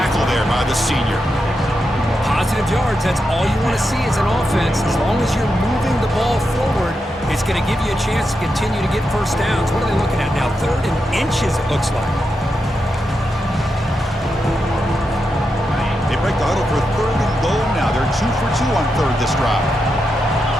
there by the senior. Positive yards, that's all you want to see as an offense. As long as you're moving the ball forward, it's going to give you a chance to continue to get 1st downs. What are they looking at now? 3rd and inches, it looks like. Break the huddle for 3rd and goal now. They're 2 for 2 on 3rd this drive.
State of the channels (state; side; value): normal; both; correlation 0.86